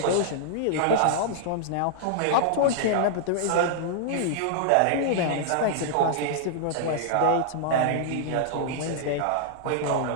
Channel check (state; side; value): different; both; correlation -0.01